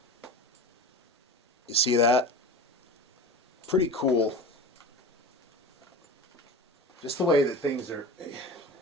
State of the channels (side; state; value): both; normal; correlation 0.32